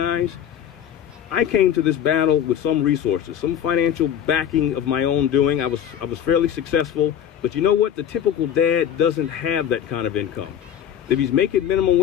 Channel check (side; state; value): right; quieter; 9.6 dB